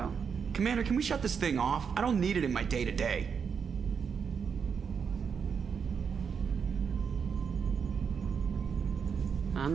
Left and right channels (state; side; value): quieter; left; 6.5 dB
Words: Commander, can we shut this thing off? I don't need it in my day-to-day.